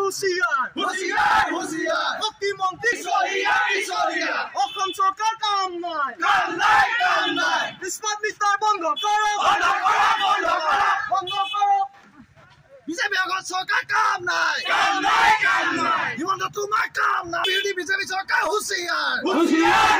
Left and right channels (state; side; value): identical; both; correlation 1.00